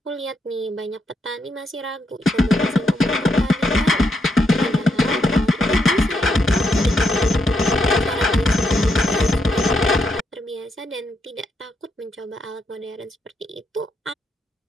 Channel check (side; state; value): both; normal; correlation 0.79